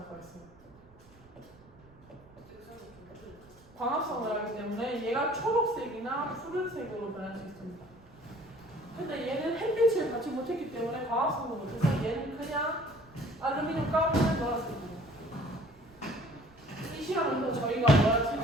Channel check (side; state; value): right; noise; rumble, 25 dB below the sound